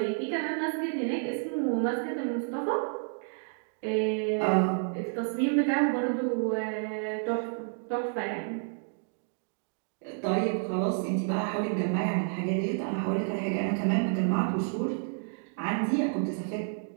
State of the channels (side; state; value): left; silent; 58 dB below the other